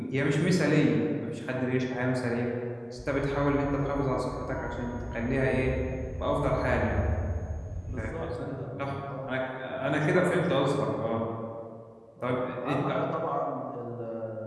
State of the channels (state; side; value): identical; both; correlation 1.00